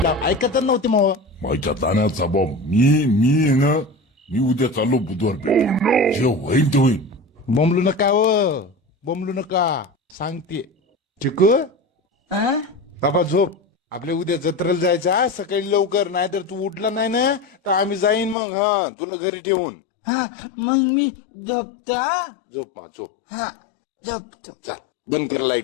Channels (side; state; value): right; drops out; at 18.4 s